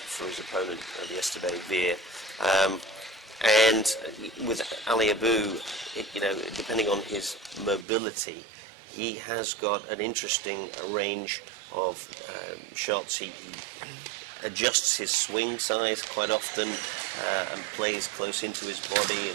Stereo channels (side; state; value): left; drops out; at 7.9 s